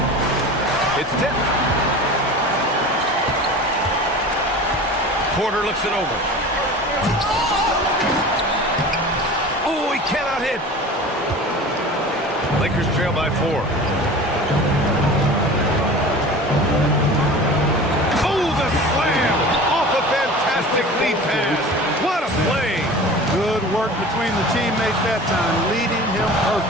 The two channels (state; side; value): normal; both; correlation 0.37